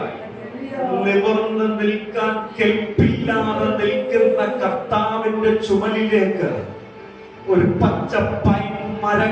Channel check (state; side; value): identical; both; correlation 1.00